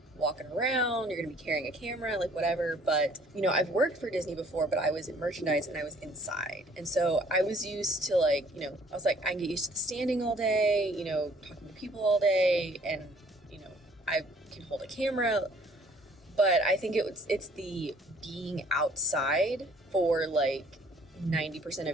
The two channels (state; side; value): normal; both; correlation 0.58